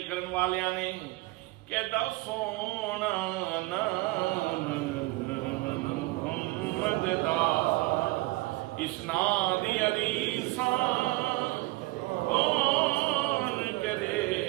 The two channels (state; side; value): quieter; left; 20.6 dB